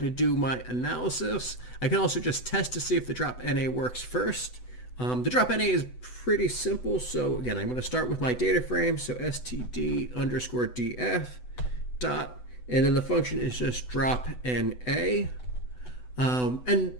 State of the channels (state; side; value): late; right; 8.0 ms